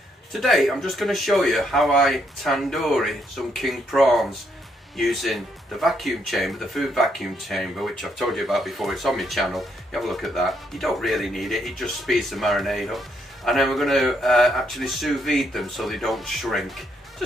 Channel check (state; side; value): normal; both; correlation 0.74